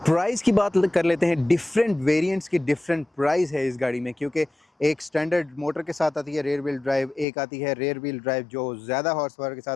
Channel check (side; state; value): right; drops out; at 7.2 s